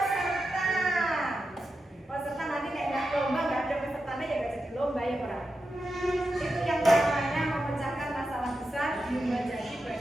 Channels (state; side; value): normal; both; correlation 0.89